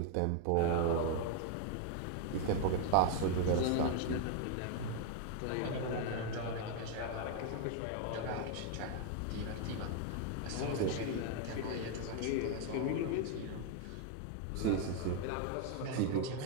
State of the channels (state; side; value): different; both; correlation 0.00